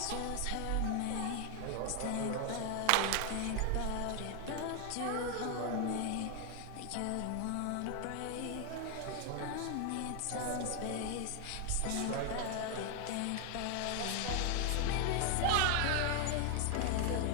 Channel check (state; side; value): different; both; correlation 0.01